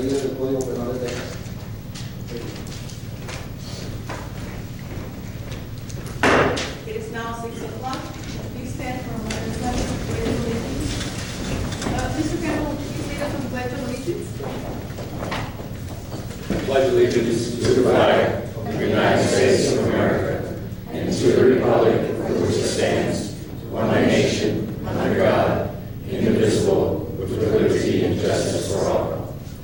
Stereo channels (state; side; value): identical; both; correlation 1.00